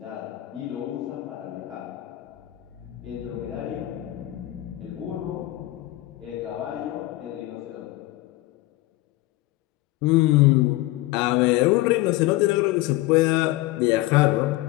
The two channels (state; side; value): quieter; right; 17.9 dB